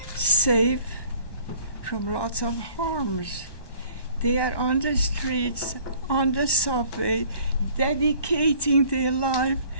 safe from lots of harms. They are on the streets, on the subway, dedicating their life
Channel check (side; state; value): right; late; 1.1 ms